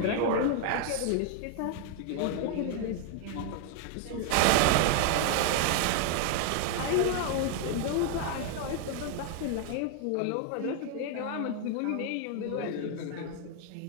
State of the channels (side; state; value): both; different; correlation 0.00